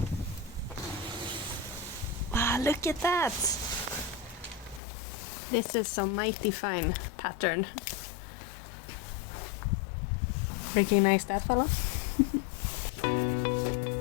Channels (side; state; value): right; drops out; at 4.8 s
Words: Wow, look at that! This is some mighty fine pattern. Recognize that fella?